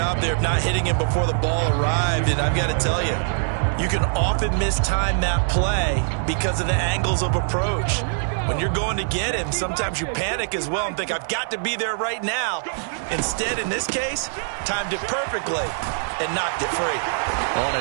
there of not hitting him before the ball arrived, and I've got to tell you, you can often mistime that play because of the angles of approach. When you're going to get him, sometimes you panic as well and think, I've got to be there right now. Instead, in this case, timed it perfectly and knocked it free. On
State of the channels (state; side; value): silent; left; digital silence